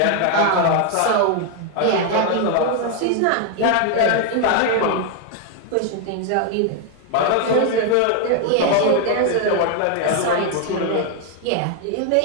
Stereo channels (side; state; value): both; different; correlation 0.01